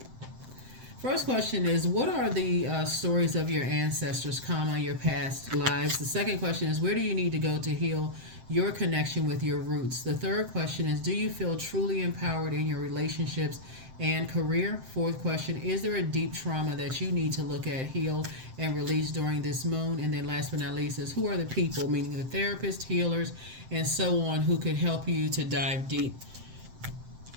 first question is, what are the stories of your ancestors, comma, your past lives? The second question is, where do you need to go to heal your connection with your roots? The third question is, do you feel truly empowered in your relationships and career? Fourth question, is there a deep trauma that you need to look at, heal, and release during this moon? And then last but not least is, who are the people, meaning the therapists, healers, and so on, who could help you to dive deep?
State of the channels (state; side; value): late; left; 7.7 ms